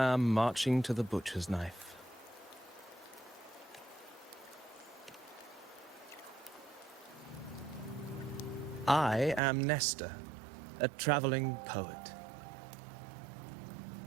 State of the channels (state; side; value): drops out; left; at 9.4 s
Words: marching to the butcher's knife. I am Nestor, a traveling poet.